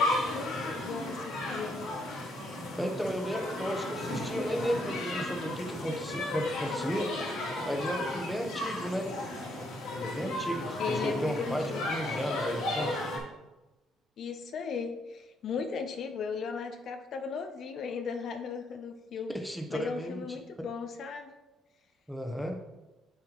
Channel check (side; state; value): both; normal; correlation 0.73